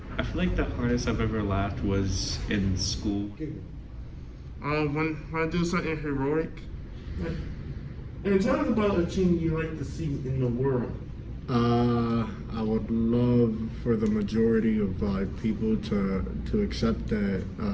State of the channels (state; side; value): identical; both; correlation 1.00